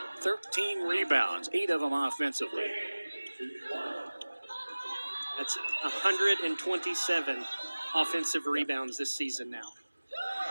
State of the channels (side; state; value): both; inverted; correlation -1.00